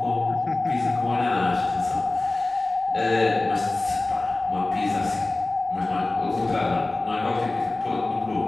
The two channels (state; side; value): quieter; right; 3.0 dB